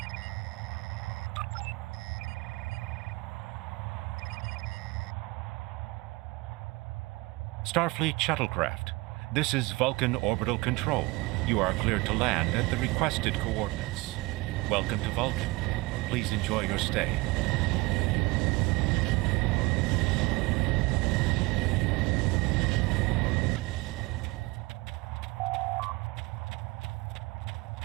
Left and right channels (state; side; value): quieter; left; 23.2 dB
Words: Starfleet shuttlecraft. This is Vulcan Orbital Control. You are cleared to land at the requested coordinates. Welcome to Vulcan. Please enjoy your stay.